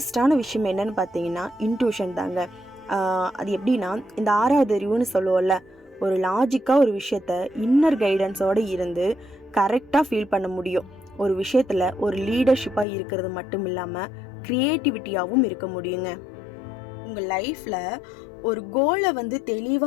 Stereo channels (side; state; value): right; drops out; at 12.9 s